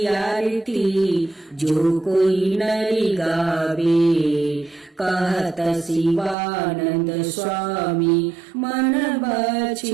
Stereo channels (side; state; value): left; drops out; at 6.4 s